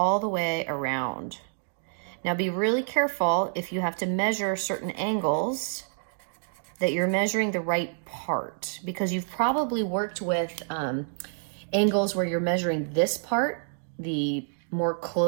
the way around. Now be really careful if you have to measure certain angles that you're measuring the right part, because you've probably worked with angles where you're measuring this part, the more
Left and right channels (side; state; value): left; silent; digital silence